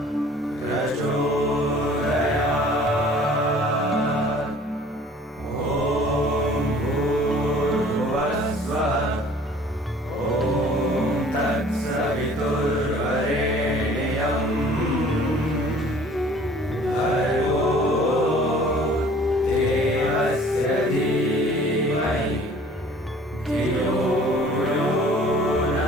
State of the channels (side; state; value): both; normal; correlation 0.51